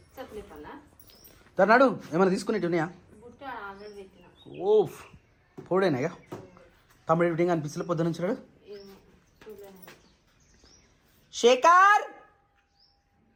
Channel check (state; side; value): identical; both; correlation 1.00